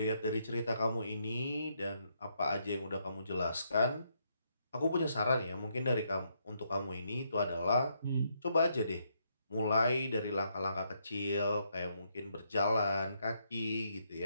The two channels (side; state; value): both; inverted; correlation -0.76